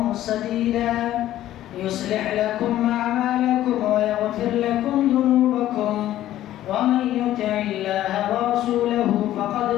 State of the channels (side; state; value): right; quieter; 13.4 dB